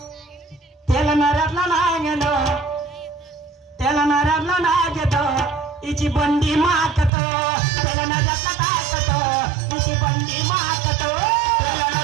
तेल नऱ्यातला नाही घेतो, तेल नऱ्यातला नाही घेतो, हिची बंडी मारतो. तेल नऱ्यातला टाकतो, हिची बंडी मारतो. तेल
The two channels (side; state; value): left; drops out; at 7.1 s